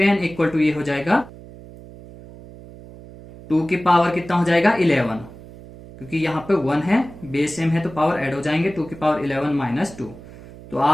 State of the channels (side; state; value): right; noise; hum, 18 dB below the sound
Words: इक्वल टू ये हो जाएगा 2 की पावर कितना हो जाएगा 11, क्योंकि यहाँ पे 1 है, बेस सेम है तो पावर ऐड हो जाएंगे, 2 की पावर 11 माइनस 2। तो